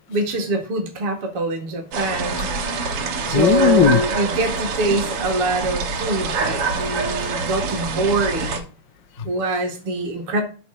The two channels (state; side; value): late; left; 7.0 ms